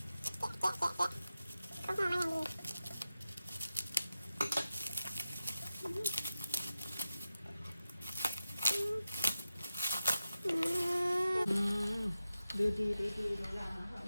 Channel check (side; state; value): both; inverted; correlation -0.92